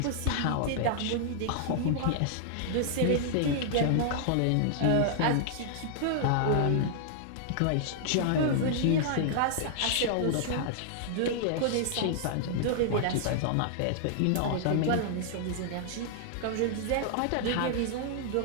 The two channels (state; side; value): different; both; correlation -0.01